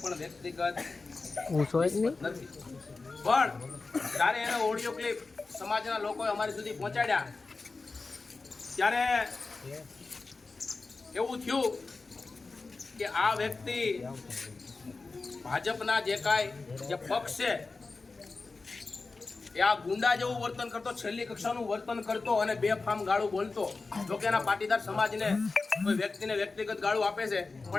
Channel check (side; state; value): right; quieter; 3.9 dB